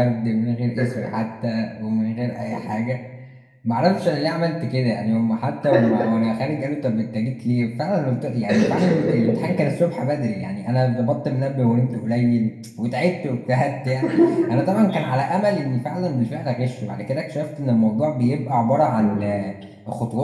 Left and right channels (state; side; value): identical; both; correlation 1.00